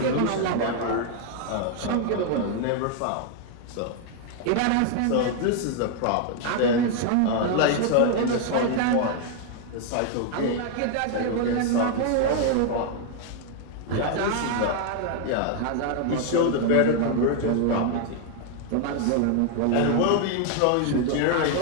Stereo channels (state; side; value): different; both; correlation 0.00